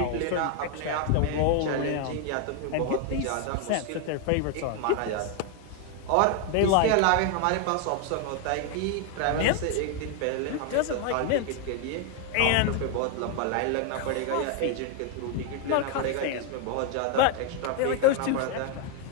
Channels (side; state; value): both; different; correlation 0.01